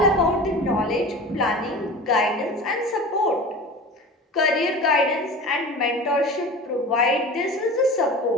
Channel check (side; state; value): both; normal; correlation 0.34